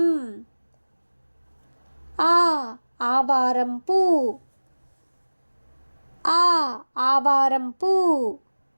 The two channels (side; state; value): both; inverted; correlation -1.00